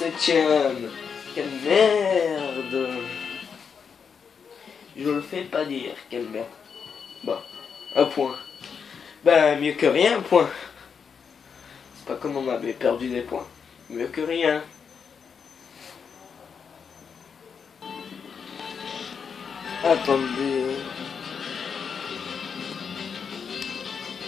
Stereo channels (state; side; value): quieter; right; 6.4 dB